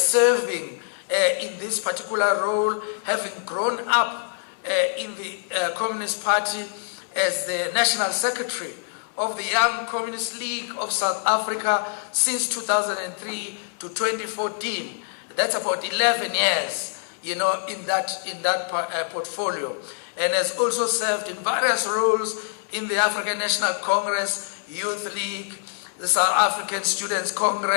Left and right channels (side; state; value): right; silent; 62 dB below the other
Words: in this particular role, having grown up in the Communist Party as the National Secretary of the Young Communist League of South Africa since 2003 to 2014. That's about 11 years, you know, in that portfolio, and has also served in various roles in the African National Congress, Youth League, the South African Students